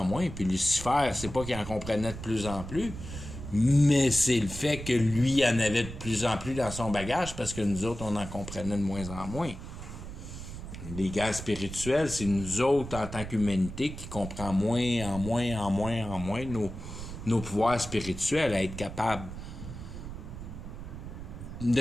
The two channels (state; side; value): noise; right; rumble, 10 dB below the sound